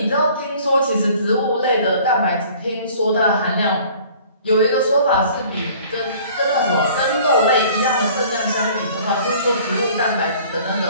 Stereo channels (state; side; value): inverted; both; correlation -0.51